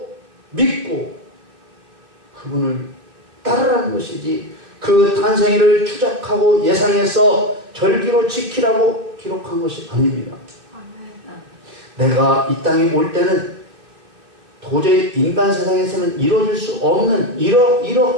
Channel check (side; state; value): left; late; 2.7 ms